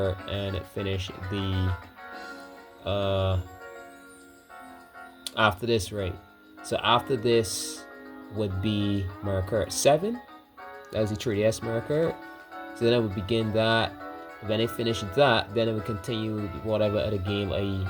and finish the after this, right? So after this would be Mario Kart 7. That's the 3DS Mario Kart. So then I would begin that. When I finish that, then I would continue whatever other game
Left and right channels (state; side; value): identical; both; correlation 1.00